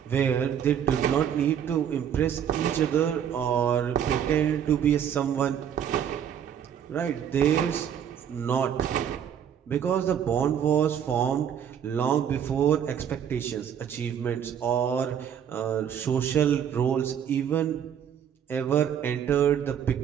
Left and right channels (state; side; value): quieter; left; 8.9 dB